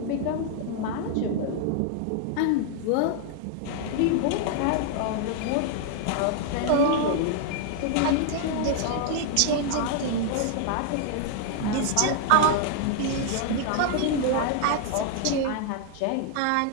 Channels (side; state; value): both; different; correlation 0.00